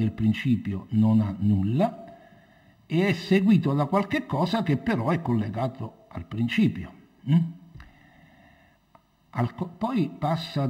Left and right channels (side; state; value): both; identical; correlation 1.00